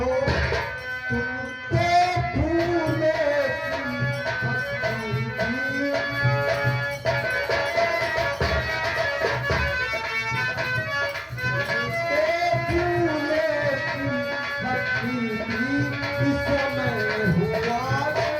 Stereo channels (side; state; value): both; identical; correlation 1.00